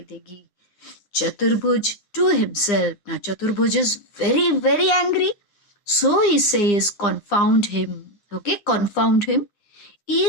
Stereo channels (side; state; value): right; late; 9.9 ms